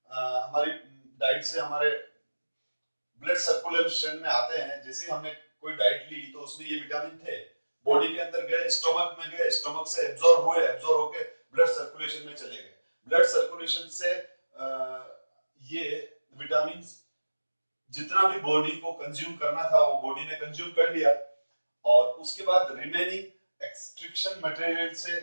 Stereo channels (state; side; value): inverted; both; correlation -1.00